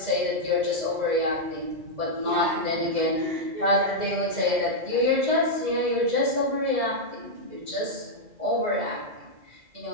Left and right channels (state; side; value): late; left; 2.0 ms